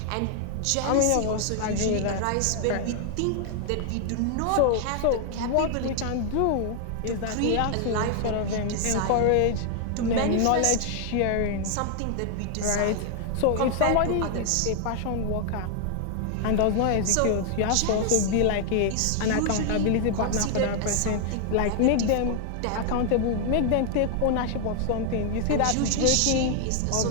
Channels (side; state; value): both; different; correlation 0.00